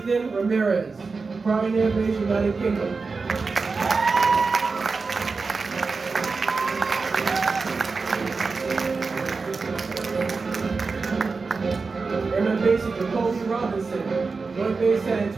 Ramirez, Crown Air Base, United Kingdom. Airman Basic, Jacoby Robinson, Joint Base San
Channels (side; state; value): left; quieter; 4.4 dB